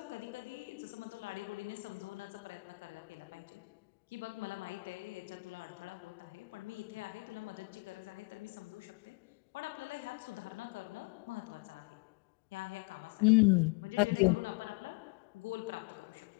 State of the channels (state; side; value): quieter; right; 29.4 dB